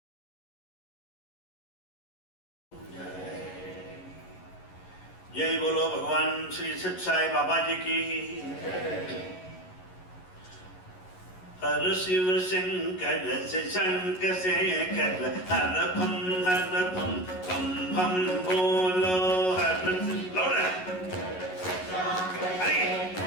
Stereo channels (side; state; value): right; late; 11 ms